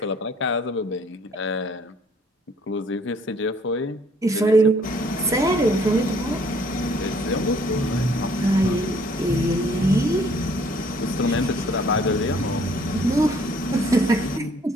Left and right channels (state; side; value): normal; both; correlation 0.61